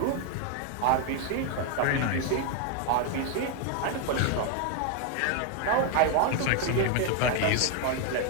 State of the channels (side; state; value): both; different; correlation 0.01